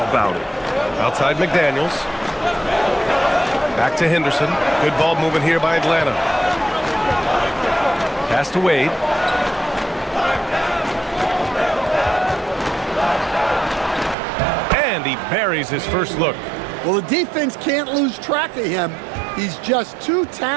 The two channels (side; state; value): left; drops out; at 14.2 s